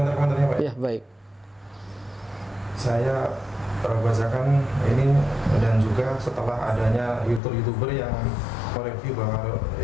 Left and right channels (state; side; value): drops out; right; at 7.4 s